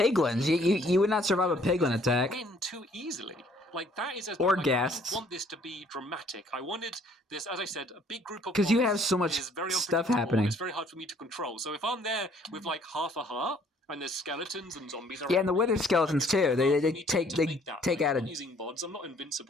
You would not survive a piglin attack. Win too easily. Like, that is or guests. I want this to be dramatic. I wanted this, as I said, a big group of because you have so much stuff happening. It's very hard for me to control. So if I'm there with like half a heart. And there's skeletons and zombies around. Yeah, and the wither skeletons too. They take out I'm not using mods. I'm not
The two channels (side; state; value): both; normal; correlation 0.61